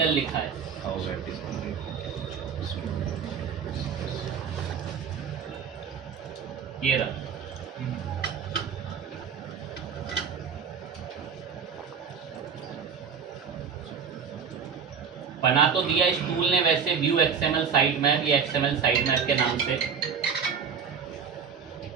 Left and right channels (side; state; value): left; quieter; 6.5 dB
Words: लिखा है। ये रहा। बना तो दिया इस टूल ने वैसे व्यू एक्सएमएल साइट मैप या एक्सएमएल साइट मैप के नाम से।